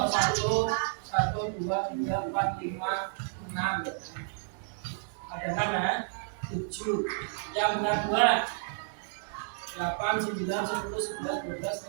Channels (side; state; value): left; silent; digital silence